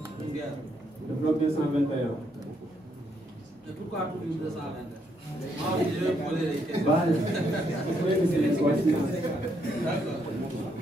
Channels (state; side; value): normal; both; correlation 0.75